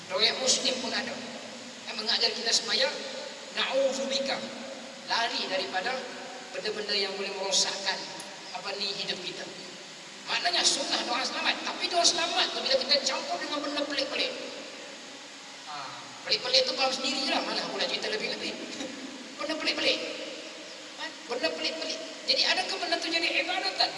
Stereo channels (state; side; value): identical; both; correlation 1.00